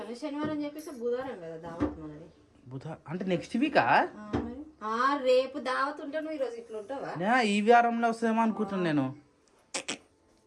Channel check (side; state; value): both; identical; correlation 1.00